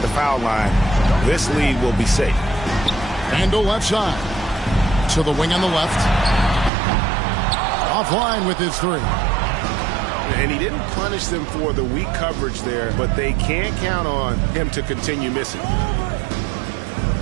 the foul line, this lead will be safe. Randle left side. To the wing on the left. Offline with his 3. And he didn't punish them for the weak coverage there, but they can't count on him to continue missing.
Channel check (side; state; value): left; drops out; at 6.7 s